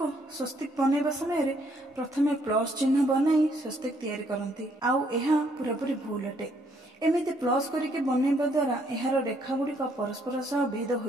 स्वस्तिक बनैबा समय रे प्रथमे प्लस चिन्ह बनाई स्वस्तिक तैयारी करंती आउ एहा पूरापूरी भूल अटे। एमिति प्लस करिके बनैबा द्वारा एहार रेखा गुड़िक परस्पर सह भेद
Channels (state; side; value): normal; both; correlation 0.69